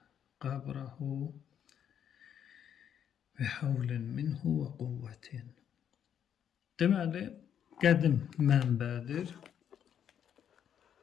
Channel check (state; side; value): quieter; right; 9.0 dB